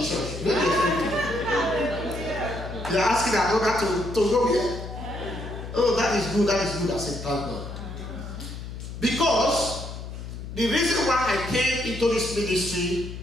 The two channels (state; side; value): noise; left; hum, 9 dB below the sound